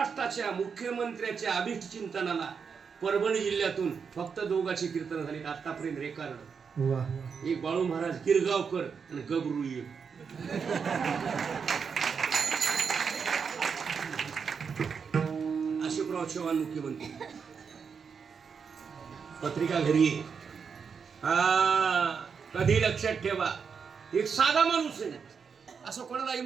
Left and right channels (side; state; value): left; quieter; 6.1 dB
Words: मुख्यमंत्र्याच्या अभिष्ट चिंतनाला परभणी जिल्ह्यातून फक्त दोघांची कीर्तन झाली आतापर्यंत रेकॉर्ड. वा एक बाळू महाराज गिरगावकर आणि गबरू एक. अशोकराव चव्हाण मुख्यमंत्री, पत्रिका घरी आहे. हा कधी लक्षात ठेवा, एक साधा माणूस आहे. असं कोणाला